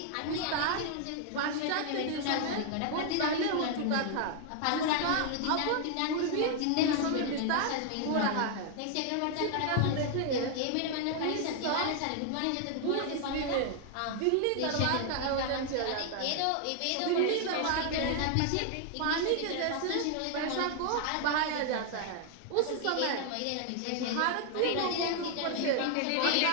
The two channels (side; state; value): both; different; correlation 0.00